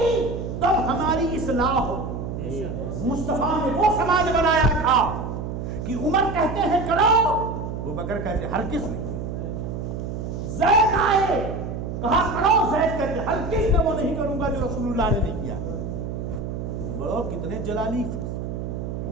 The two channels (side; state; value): right; noise; hum, 5 dB below the sound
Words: تب ہماری اصلاح ہو۔ مصطفیٰ نے وہ سماج بنایا تھا کہ عمر کہتے ہیں کرو، ابوبکر کہتے ہرگز نہیں۔ زید آئے کہا کرو، زید کہتے ہرگز میں وہ نہیں کروں گا جو رسول اللہ نے نہیں کیا۔ بڑو کتنے جلالی،